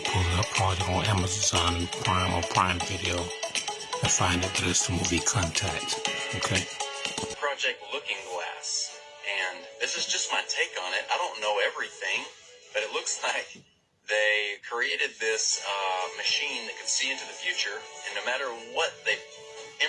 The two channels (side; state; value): both; identical; correlation 1.00